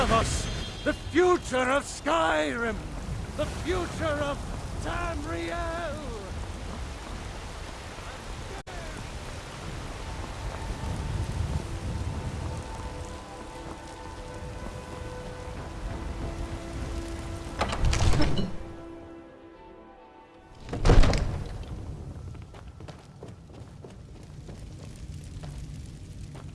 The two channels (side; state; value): both; identical; correlation 1.00